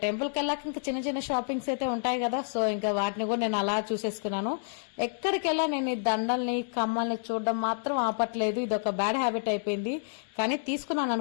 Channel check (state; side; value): silent; right; digital silence